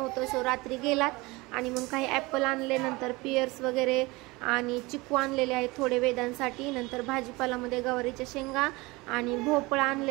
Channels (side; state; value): left; quieter; 23.0 dB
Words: सो रात्री गेलात आणि मग काही ॲपल आणले, नंतर पियर्स वगैरे आणि चिकू आणलेले आहेत थोडे वेदांसाठी. नंतर भाजीपालामध्ये गवारीच्या शेंगा आणि भोपळा